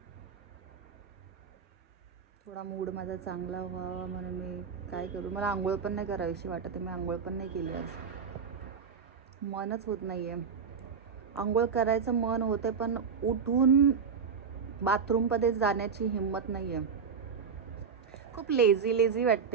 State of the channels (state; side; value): quieter; left; 6.2 dB